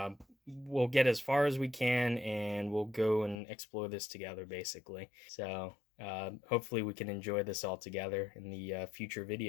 we'll get as far as we can, and we'll go and explore this together, basically. So hopefully we can enjoy this all together in the future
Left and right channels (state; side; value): drops out; right; at 3.4 s